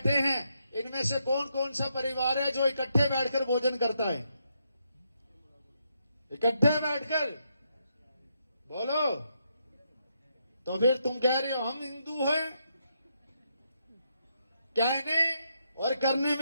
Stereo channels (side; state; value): both; inverted; correlation -0.79